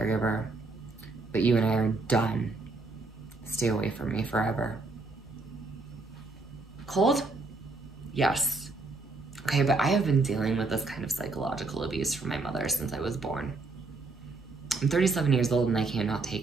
but you and I are done. Stay away from me forever. Cold? Yes. Okay, but I have been dealing with this kind of psychological abuse from my mother since I was born. I'm 37 years old and I cannot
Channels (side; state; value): left; quieter; 3.5 dB